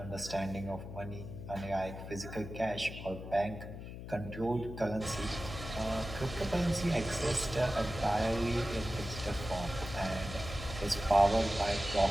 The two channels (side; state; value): left; noise; hum, 10 dB below the sound